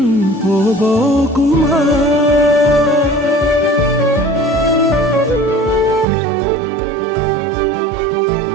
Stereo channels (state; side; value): drops out; left; at 6.1 s